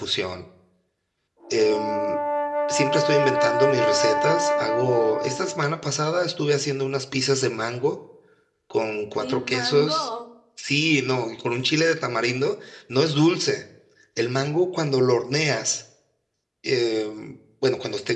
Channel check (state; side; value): identical; both; correlation 1.00